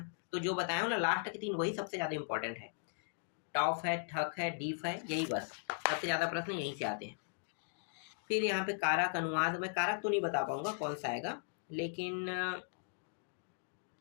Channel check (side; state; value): right; silent; digital silence